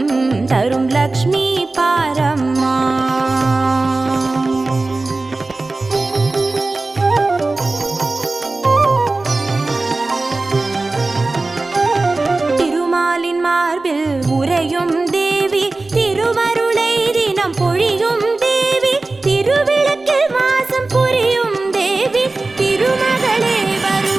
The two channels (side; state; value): left; quieter; 3.3 dB